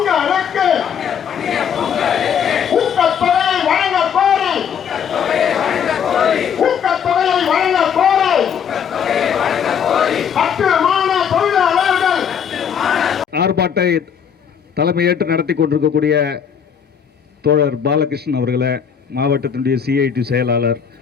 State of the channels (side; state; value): right; quieter; 7.7 dB